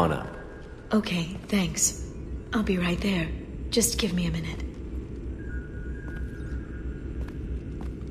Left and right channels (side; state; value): both; identical; correlation 1.00